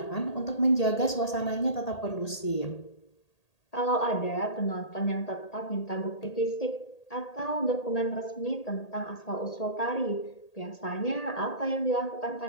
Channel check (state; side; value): late; right; 1.8 ms